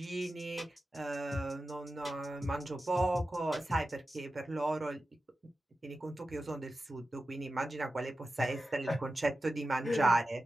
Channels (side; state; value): both; normal; correlation 0.93